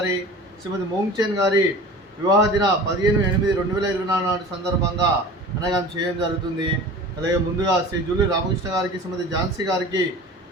శ్రీమతి మోంగ్చెన్ గారి వివాహ దిన 15/8/2024 సందర్భంగా అనగా చేయడం జరుగుతుంది. అలాగే ముందుగా శ్రీ జూలూరి రామకృష్ణ గారికి, శ్రీమతి ఝాన్సీ గారికి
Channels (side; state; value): both; normal; correlation 0.39